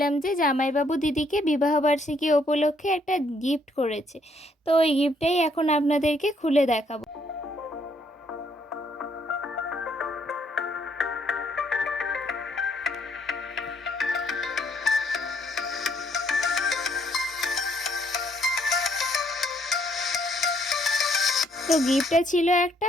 যে জামাইবাবু দিদিকে বিবাহবার্ষিকী উপলক্ষে একটা গিফট করেছে। তো ওই গিফটটাই এখন আপনাদেরকে খুলে দেখাবো। তো গিফটটা ছিল একটা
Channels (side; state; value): both; normal; correlation 0.69